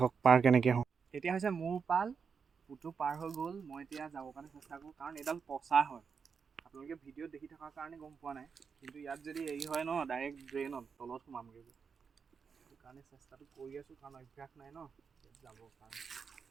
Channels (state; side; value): quieter; left; 5.9 dB